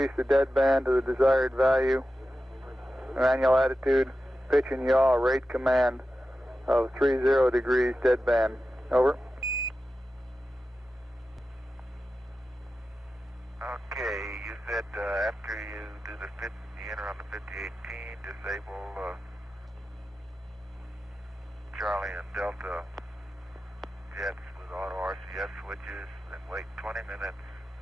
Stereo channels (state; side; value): normal; both; correlation 0.92